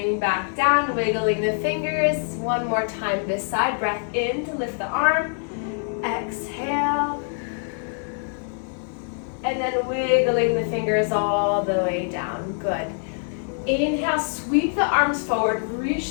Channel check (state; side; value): silent; right; 62 dB below the other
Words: back down, wiggling the fingers. One more time this side. Breath in to lift the arm. Exhale. And then wiggling the fingers all the way down. Good. Inhale, sweep the arms forward,